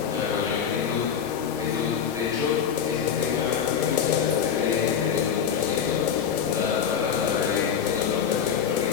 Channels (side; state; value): right; quieter; 7.8 dB